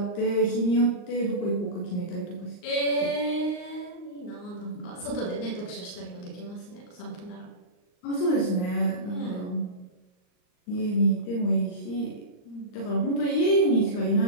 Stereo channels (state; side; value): late; right; 39 ms